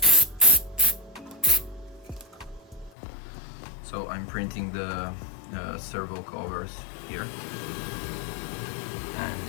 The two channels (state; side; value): drops out; right; at 2.9 s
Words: So I'm printing the servo covers here,